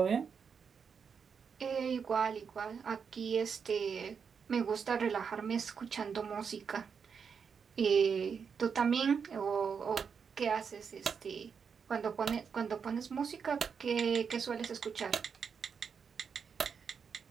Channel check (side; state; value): left; quieter; 6.3 dB